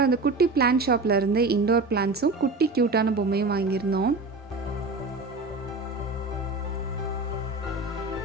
அந்த குட்டி பிளான்ட் ஷாப்பில் இருந்து இண்டோர் பிளான்ட்ஸும் குட்டி க்யூட்டான பொம்மையும் வாங்கியிருந்தோம்.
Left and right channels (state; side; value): quieter; left; 3.4 dB